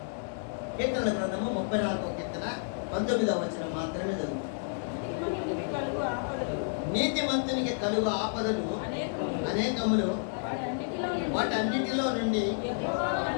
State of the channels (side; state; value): right; silent; 57 dB below the other